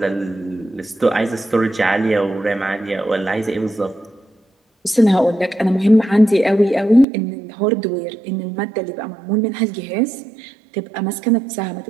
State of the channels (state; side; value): drops out; left; at 7.1 s